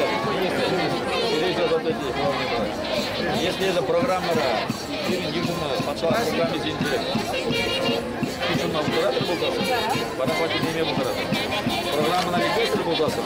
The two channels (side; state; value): both; identical; correlation 1.00